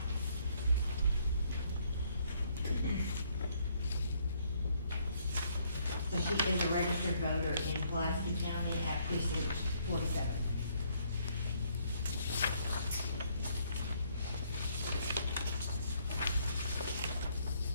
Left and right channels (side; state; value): both; inverted; correlation -0.68